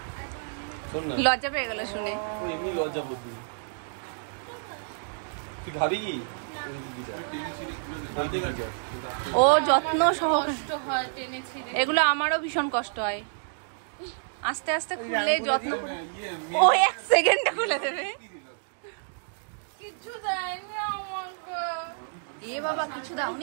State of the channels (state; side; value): silent; left; digital silence